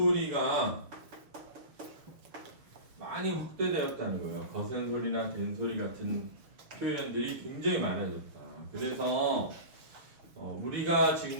많이 확대되었다는 거예요. 거센소리나 된소리 같은 표현들이 굉장히 많아졌다. 그래서 우리가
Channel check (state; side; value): late; left; 6.6 ms